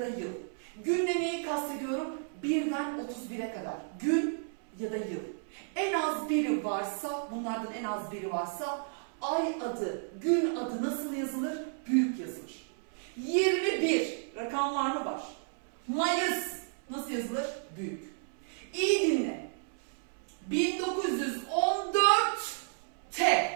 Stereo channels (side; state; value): left; silent; 56 dB below the other